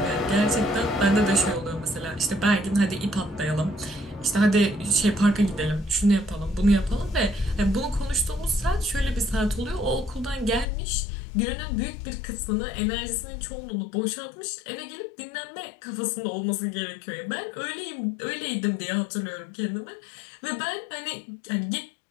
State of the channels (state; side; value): drops out; right; at 10.7 s